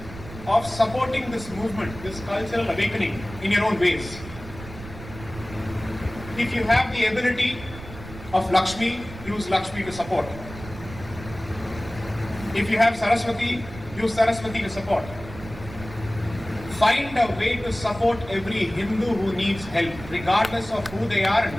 of supporting this movement, this cultural awakening in your own ways. If you have the ability of Lakshmi, use Lakshmi to support. If you have Saraswati, use Saraswati to support. Find a way to support every Hindu who needs help, regardless of who they are and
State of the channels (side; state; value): right; noise; rumble, 14 dB below the sound